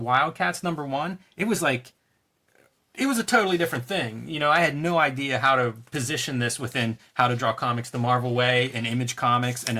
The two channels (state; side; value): identical; both; correlation 1.00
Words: #1. It was a totally different thing. I had no idea how to position this within How to Draw Comics the Marvel Way and Image Comics, and